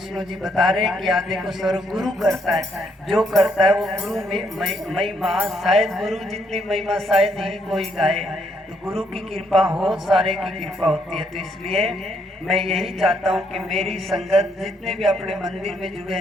जी बता रहे हैं कि आदि को सर्व गुरु करता है, जो करता है वो गुरु में महिमा, शायद गुरु जितनी महिमा शायद ही कोई गाए। तो गुरु की कृपा हो, सारे की कृपा होती है। तो इसलिए मैं यही चाहता हूँ कि मेरी संगत जितने भी अपने मंदिर में जुड़े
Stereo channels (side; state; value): both; normal; correlation 0.73